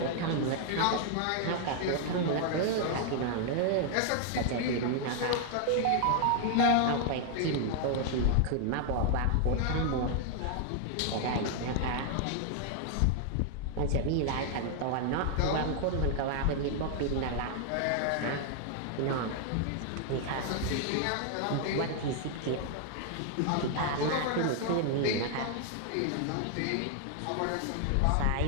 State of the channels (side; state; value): both; different; correlation 0.00